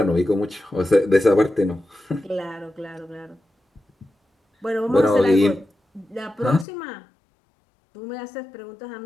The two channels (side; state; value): right; drops out; at 6.7 s